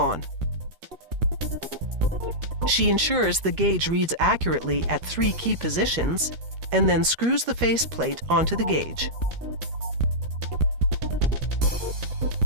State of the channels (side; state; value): left; late; 13 ms